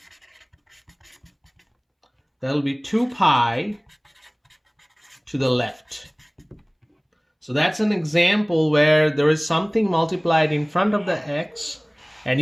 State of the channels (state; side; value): identical; both; correlation 1.00